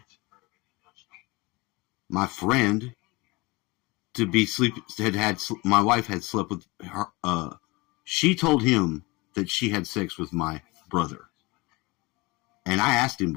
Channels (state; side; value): quieter; right; 24.2 dB